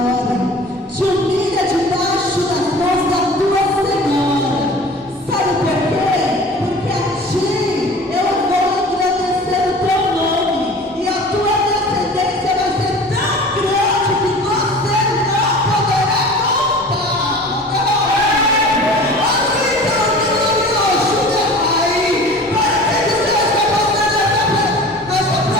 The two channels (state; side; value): normal; both; correlation 0.41